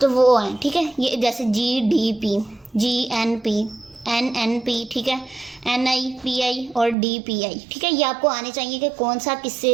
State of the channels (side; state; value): left; drops out; at 7.0 s